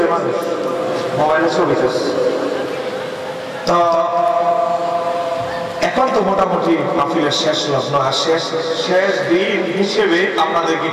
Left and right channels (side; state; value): both; identical; correlation 1.00